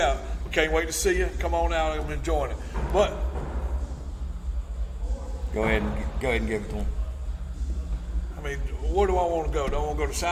out. We can't wait to see you. Come on out and join it. But Go ahead and give it to them. I mean, where do I want to go? Do I want to go to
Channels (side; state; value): both; identical; correlation 1.00